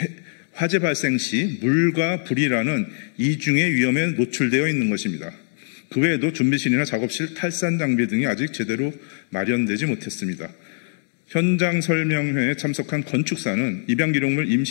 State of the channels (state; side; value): silent; right; digital silence